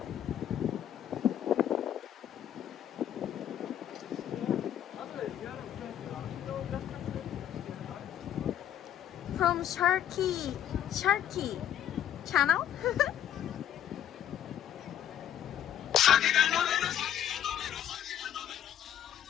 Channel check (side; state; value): right; quieter; 10.5 dB